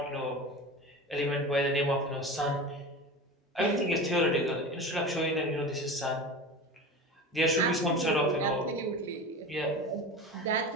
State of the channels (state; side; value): normal; both; correlation 0.31